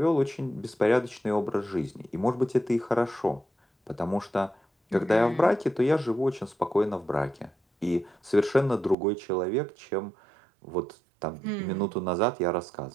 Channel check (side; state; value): left; drops out; at 9.0 s